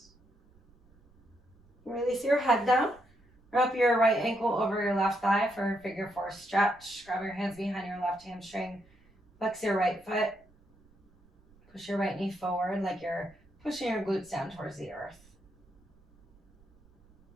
Release your head down. Wrap your right ankle over your left thigh for a figure four stretch. Grab your hands behind your left hamstring. Flex your right foot. Push your right knee forward like you're pushing your glutes down towards the earth.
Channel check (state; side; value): noise; right; rumble, 30 dB below the sound